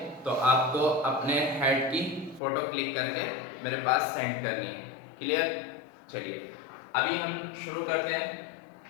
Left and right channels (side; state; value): right; drops out; at 2.4 s